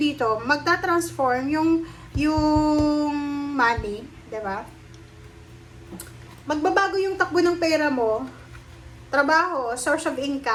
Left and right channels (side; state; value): both; identical; correlation 1.00